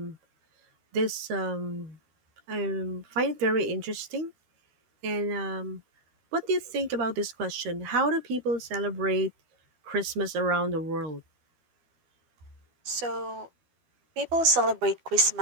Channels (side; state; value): left; late; 12 ms